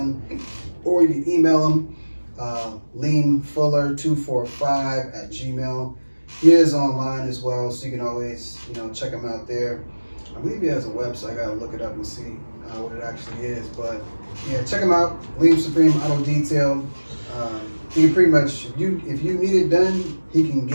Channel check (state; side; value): inverted; both; correlation -1.00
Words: or you can email him leanfuller245@gmail. He is online as well, so you can always check him out there. I believe he has a website. I gotta look it up and see what it actually is. But yeah, check him out. Lean Supreme Auto Detail. He can pretty much, if you need it done, he can